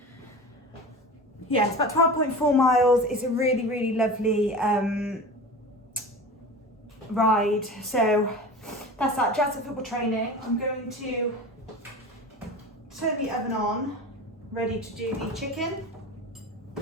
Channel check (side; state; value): both; normal; correlation 0.33